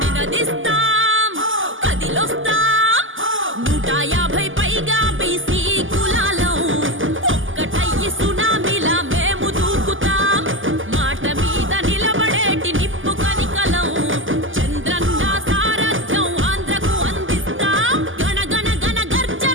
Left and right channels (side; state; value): left; late; 0.58 ms